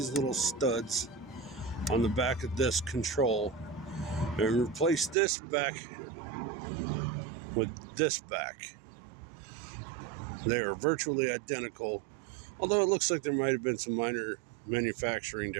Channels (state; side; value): drops out; left; at 5.2 s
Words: little studs on the back of this control and replace this back with this back. They are virtually identical, although it looks like there might have been some minor manufacturing